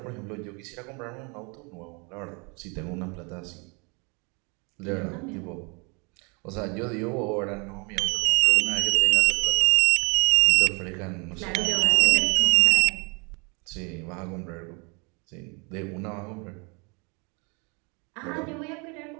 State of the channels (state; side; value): quieter; left; 31.8 dB